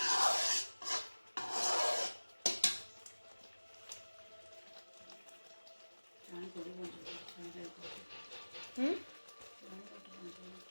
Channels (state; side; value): inverted; both; correlation -1.00